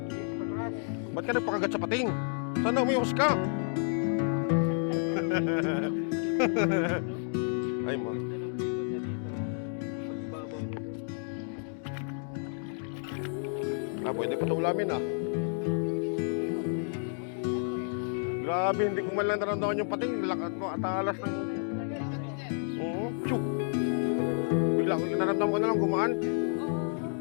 Ba't ka nagpakagat sa pating? Sana umiyos ka? Ay mo. Pwede pa ito ulamin ah. Grabe, hindi ko man lang naramdaman yung pating. Lakat mo at alas ng... Oo, syuk. Bigla ko naramdaman ko na lang gumaan.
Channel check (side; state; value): right; silent; 57 dB below the other